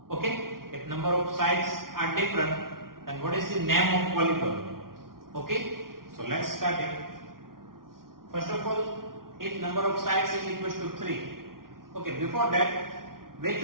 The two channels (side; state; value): left; late; 0.92 ms